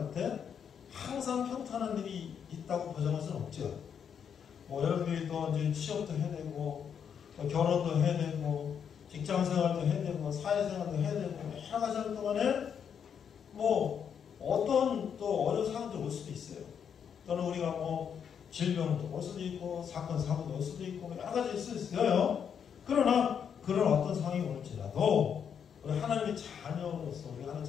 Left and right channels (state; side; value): quieter; right; 7.7 dB